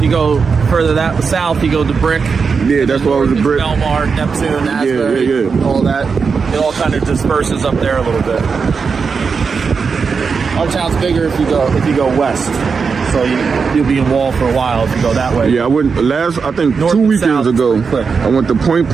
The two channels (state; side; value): quieter; left; 5.4 dB